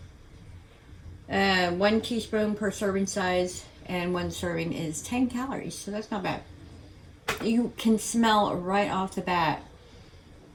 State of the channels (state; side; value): identical; both; correlation 1.00